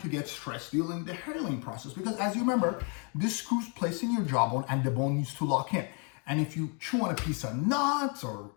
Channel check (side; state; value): right; quieter; 36.9 dB